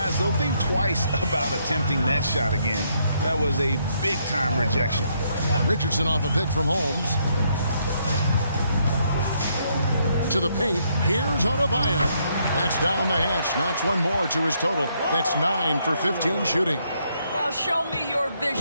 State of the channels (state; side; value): inverted; both; correlation -0.73